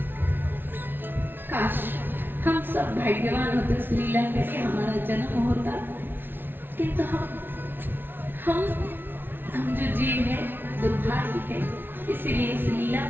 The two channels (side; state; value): left; late; 0.10 ms